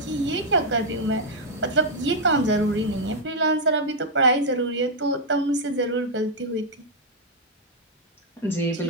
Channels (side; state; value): both; normal; correlation -0.03